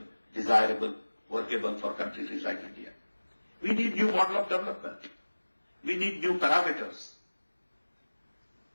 desirable, workable for countries like India. We need new model of development. We need new parameters.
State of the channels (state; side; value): inverted; both; correlation -1.00